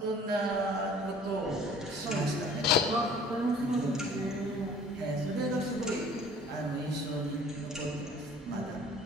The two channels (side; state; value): both; normal; correlation 0.51